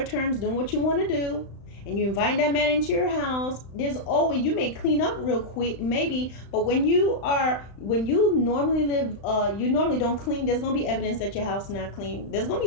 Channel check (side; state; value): right; late; 35 ms